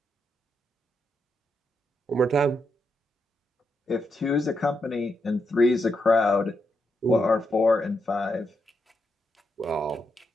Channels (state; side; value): normal; both; correlation 0.82